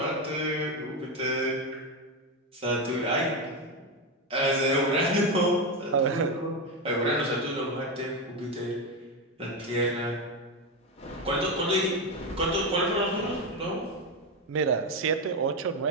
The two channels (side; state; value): both; normal; correlation 0.11